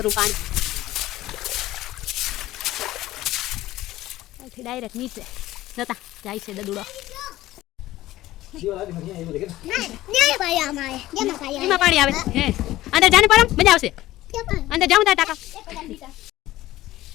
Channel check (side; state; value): right; quieter; 15.9 dB